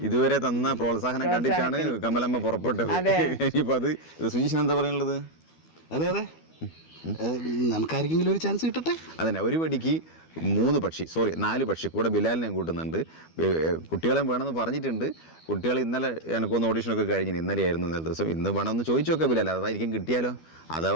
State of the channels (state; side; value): late; right; 12 ms